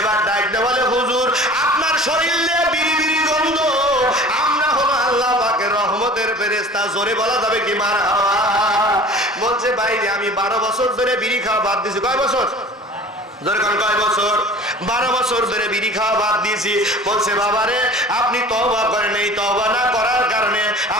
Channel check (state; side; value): normal; both; correlation 0.43